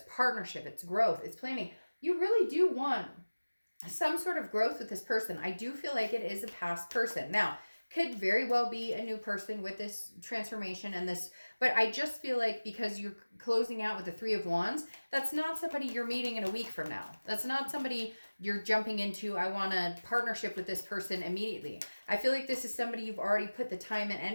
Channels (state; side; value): inverted; both; correlation -1.00